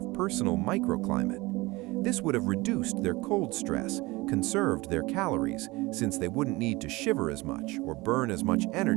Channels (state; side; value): quieter; left; 22.0 dB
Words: personal microclimate. This would have reduced their cold stress, conserved their calories, since they wouldn't need to shiver as much or burn as much